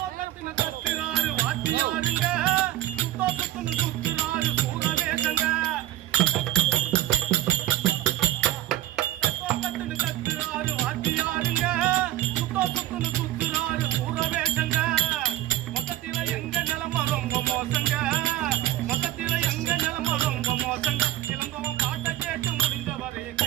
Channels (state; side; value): quieter; left; 13.9 dB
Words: கத்துறாரு வாத்தியாருங்க சுத்துறாரு சூரவேசங்க கத்துறாரு வாத்தியாருங்க சுத்துறாரு சூரவேசங்க மொத்தத்தில எங்க நிலம ரொம்ப மோசங்க மொத்தத்தில எங்க நிலம ரொம்ப மோசங்க இளங்கோவன் பாட்டை கேட்டு முடிந்தவரை